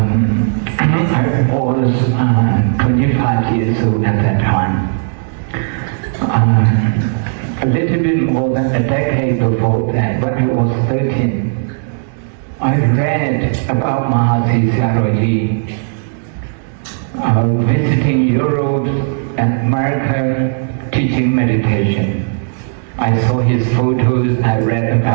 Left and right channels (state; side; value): silent; left; digital silence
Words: was 25 years old at that time. A little bit more than a decade before that, when I was 13, I read about Mahasi Sayadaw visiting Europe and America teaching meditation. I saw his photos, I read